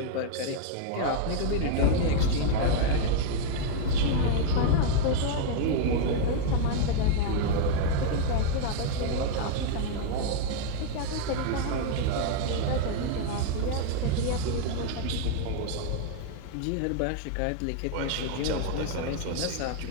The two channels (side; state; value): both; different; correlation -0.01